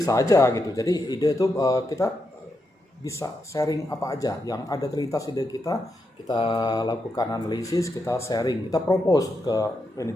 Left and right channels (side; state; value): both; normal; correlation 0.84